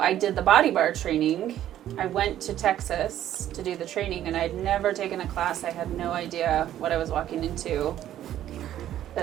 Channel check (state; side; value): quieter; left; 11.9 dB